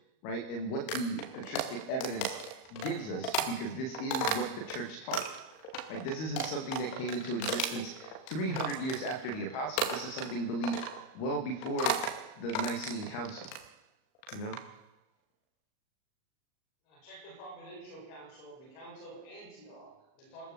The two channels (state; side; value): late; right; 38 ms